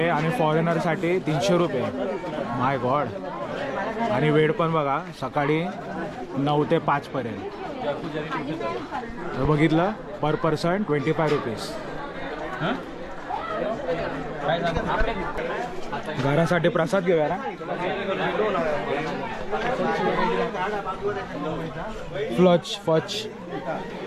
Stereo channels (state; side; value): identical; both; correlation 1.00